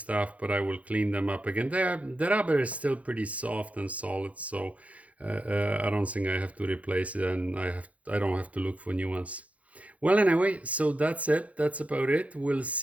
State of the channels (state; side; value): late; left; 0.067 ms